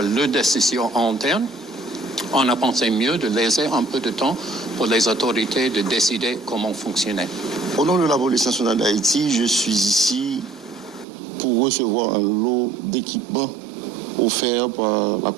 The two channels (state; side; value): drops out; left; at 11.1 s